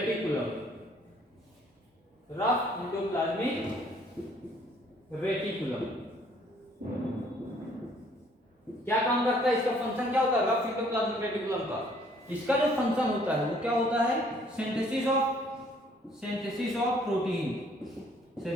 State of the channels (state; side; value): normal; both; correlation 0.61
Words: Rough endoplasmic reticulum क्या काम करता है, इसका फंक्शन क्या होता है, रफ इंडोप्लाज्मिक रेटिकुलम का इसका जो फंक्शन होता है वो क्या होता है, सिंथेसिस ऑफ प्रोटीन,